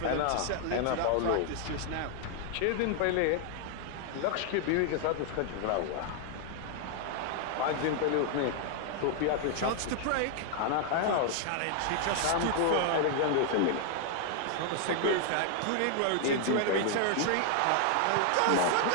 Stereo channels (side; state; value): both; different; correlation 0.00